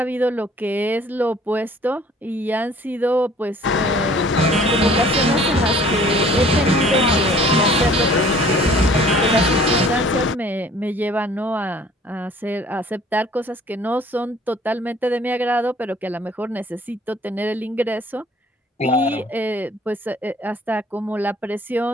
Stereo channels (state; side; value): normal; both; correlation 0.53